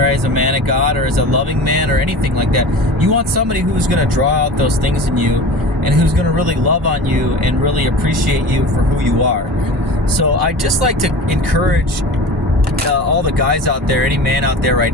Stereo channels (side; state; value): both; normal; correlation 0.35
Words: as a man of God, or as a loving man, or anything like that. You want somebody who's going to draw out those things in you, and who's going to really love on you and really appreciate you for who you are. So I just like to encourage all the guys out there, any man out there right